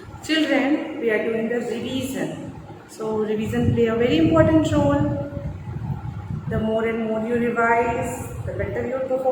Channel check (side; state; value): both; identical; correlation 1.00